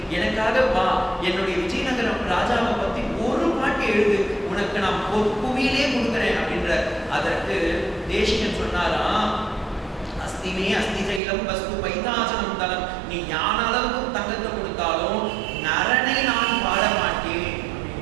எனக்காக வா, என்னுடைய விஜயநகரம் ராஜாவை பத்தி ஒரு பாட்டு எழுது, உனக்கு நான் புவியிலே கொடுக்குறேன் அப்படின்ற. அதற்கு தேசிகன் சொன்னாராம், அஸ்திமே அஸ்தி சைலம் வஸ்து பைதாசனம் தலம், நீ ஞான அளவுக்கு தங்கத்தை கொடுத்தாலும் நரனை நான் பாட மாட்டேன்.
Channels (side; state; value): left; drops out; at 11.2 s